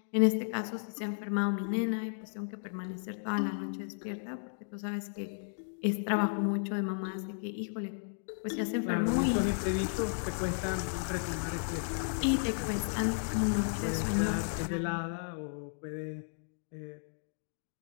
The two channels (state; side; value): silent; right; digital silence